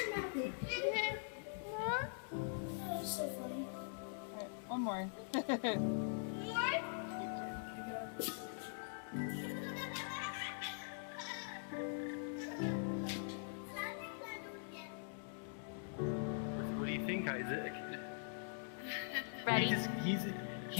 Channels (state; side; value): silent; right; digital silence